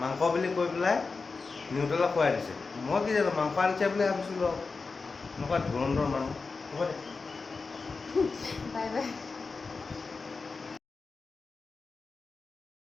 বুলি কৈ পেলাই নিউট্ৰেলা খুৱাই দিছে মই কি জানো মাংস আনিছে বুলি ভাবিছিলোঁ এনেকুৱা ধুৰন্ধৰ মানুহ হ'ব দে বাই বাই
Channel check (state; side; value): quieter; right; 4.3 dB